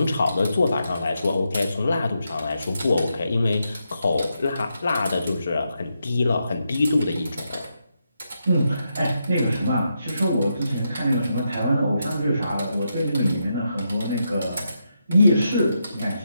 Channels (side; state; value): both; inverted; correlation -0.83